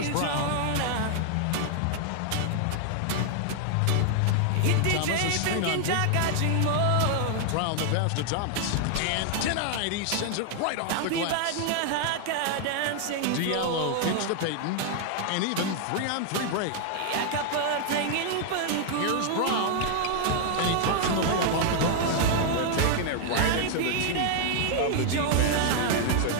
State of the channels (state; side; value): different; both; correlation 0.00